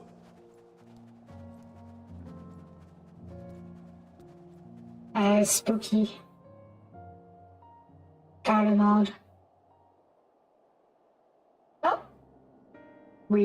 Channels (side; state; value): both; identical; correlation 1.00